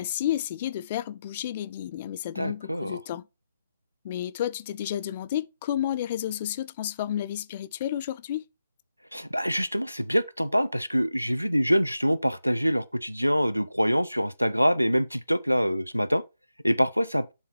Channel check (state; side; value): inverted; both; correlation -0.90